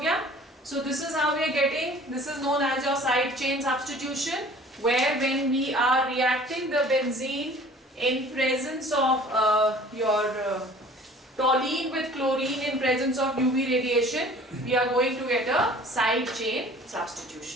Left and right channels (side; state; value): both; normal; correlation 0.49